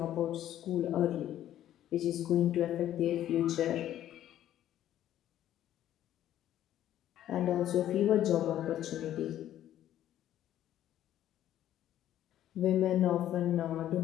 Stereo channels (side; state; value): right; quieter; 12.0 dB